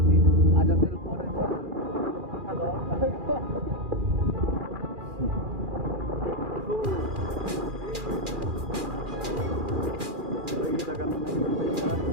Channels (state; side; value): late; left; 2.4 ms